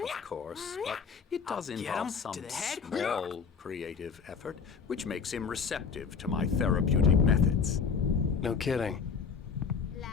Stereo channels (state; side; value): quieter; right; 5.9 dB